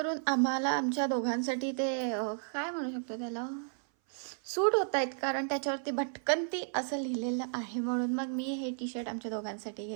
आम्हाला आमच्या दोघांसाठी ते काय म्हणू शकतो त्याला, सूट होत आहेत, कारण त्याच्यावरती भटकंती असं लिहिलेलं आहे. म्हणून मग मी हे टी शर्ट आमच्या दोघांसाठी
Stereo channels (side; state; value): left; silent; 56 dB below the other